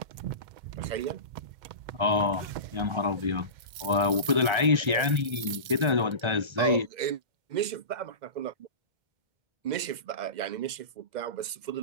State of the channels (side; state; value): left; late; 2.1 ms